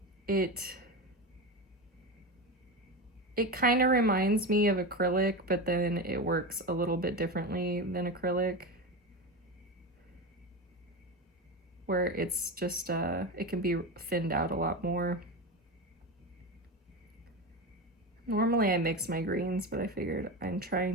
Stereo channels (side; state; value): both; normal; correlation 0.21